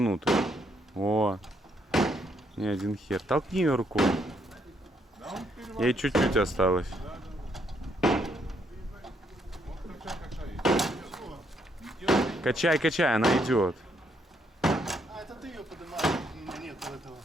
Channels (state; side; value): normal; both; correlation 0.73